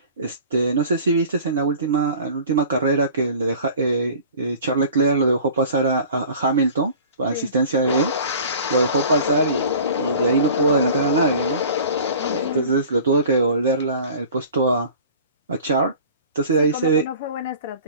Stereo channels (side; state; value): both; inverted; correlation -0.43